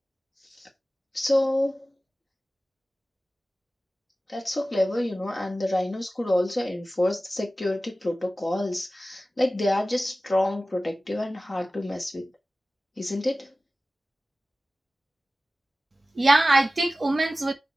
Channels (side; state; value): both; normal; correlation 0.96